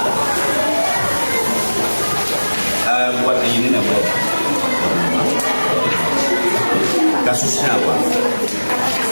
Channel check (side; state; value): both; inverted; correlation -1.00